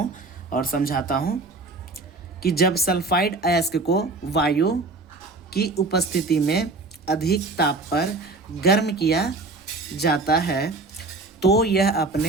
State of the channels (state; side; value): quieter; left; 3.4 dB